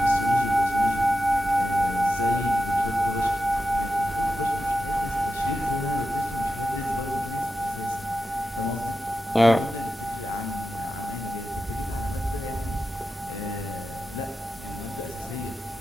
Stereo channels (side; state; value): both; normal; correlation 0.91